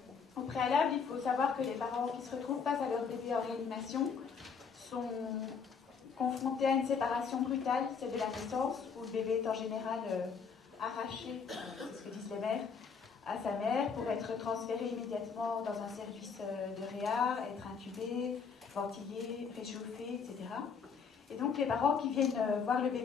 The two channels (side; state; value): right; quieter; 5.9 dB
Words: au préalable, il faut savoir que les parents qui se retrouvent face à leur bébé en réanimation sont confrontés à une séparation brutale, celle de la naissance, où le bébé est en général arraché, c'est ce que disent les mères, à sa mère pour être transféré immédiatement dans un service de réa, être intubé, ventilé, réchauffé, etc. Et donc les parents qui viennent voir le